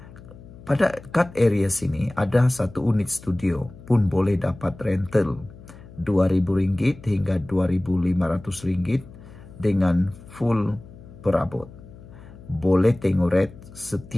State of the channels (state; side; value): noise; left; hum, 19 dB below the sound